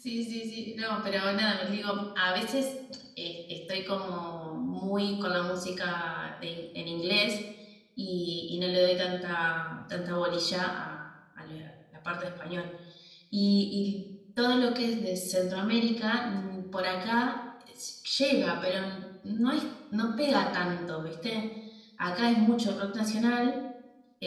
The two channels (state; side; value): identical; both; correlation 1.00